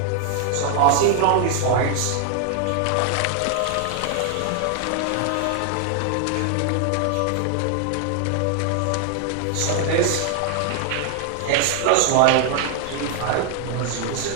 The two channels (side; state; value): both; different; correlation 0.00